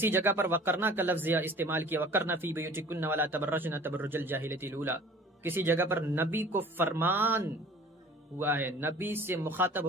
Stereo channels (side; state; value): both; normal; correlation 0.46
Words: جگہ پر وقرنا کا لفظ استعمال کیا، وقرنا فی بیوتکن ولا تبرجن تبرج الجاہلیۃ الاولی۔ کسی جگہ پر نبی کو فرمان ہوا ہے، نبی سے مخاطب